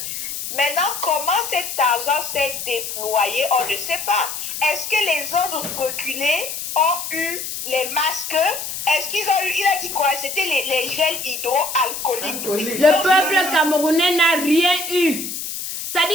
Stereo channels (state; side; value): noise; left; hiss, 6 dB below the sound